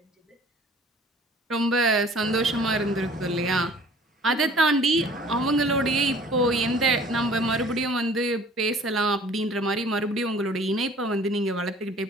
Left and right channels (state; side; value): normal; both; correlation 0.50